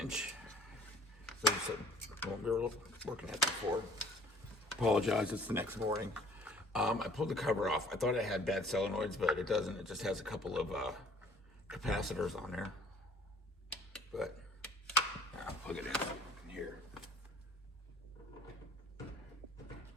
So this is what we were looking at before. Apologize, it's the next morning. I pulled the cover off. I thought it had bad solenoids, but it doesn't. It just has a couple of capacitors on there. But I'll plug it in here.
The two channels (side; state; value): both; normal; correlation 0.54